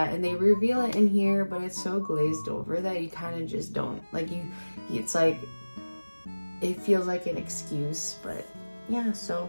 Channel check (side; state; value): both; inverted; correlation -1.00